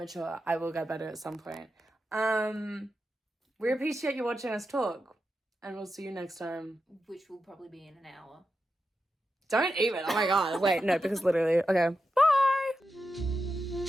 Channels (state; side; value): normal; both; correlation 0.89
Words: I will get better at some point. We appreciate you watching us talk, and we'll see you next time. Which will probably be in an hour. Don't even. Oh my god. Wait, no, because literally. Okay.